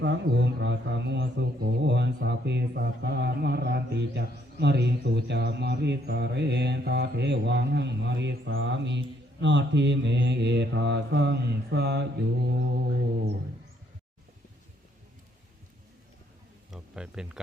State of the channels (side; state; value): both; normal; correlation 0.69